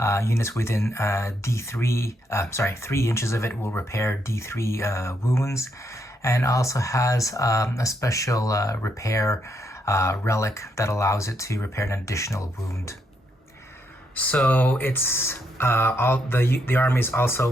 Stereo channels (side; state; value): both; normal; correlation 0.77